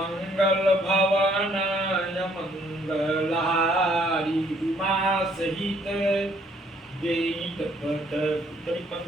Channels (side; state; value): both; normal; correlation 0.65